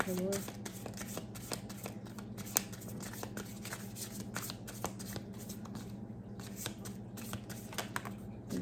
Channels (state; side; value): identical; both; correlation 1.00